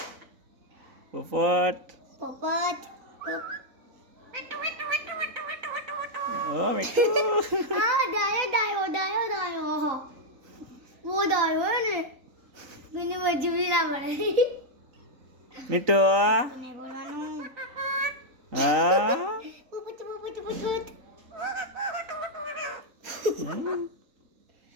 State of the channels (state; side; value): late; left; 3.9 ms